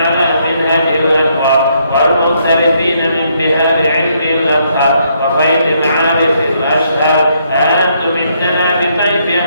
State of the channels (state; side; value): inverted; both; correlation -0.72